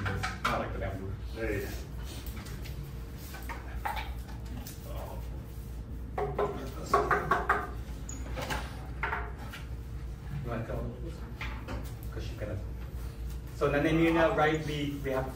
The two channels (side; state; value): both; identical; correlation 1.00